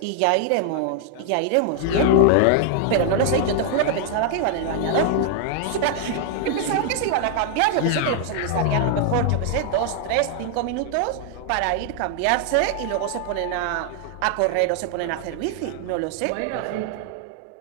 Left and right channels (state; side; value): different; both; correlation 0.00